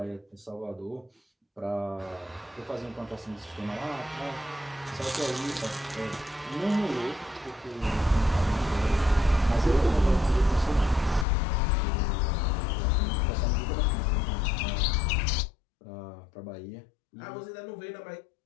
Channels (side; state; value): right; drops out; at 11.2 s